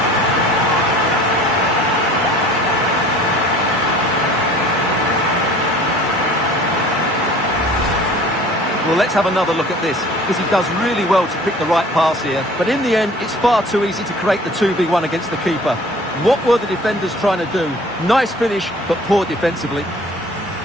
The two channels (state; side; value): normal; both; correlation 0.48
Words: Well, let's have another look at this, because he does really well to pick the right pass here. But in the end, it's far too easy to create the 2v1 against the keeper. What were the defenders trying to do? Nice finish, but poor defensively.